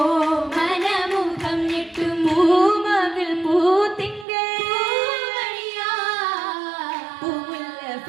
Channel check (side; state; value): left; drops out; at 4.2 s